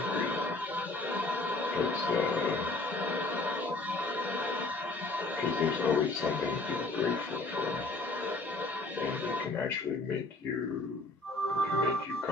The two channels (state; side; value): quieter; right; 3.2 dB